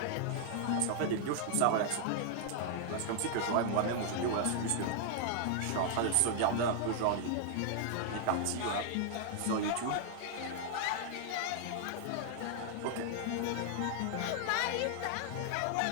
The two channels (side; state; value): both; different; correlation 0.00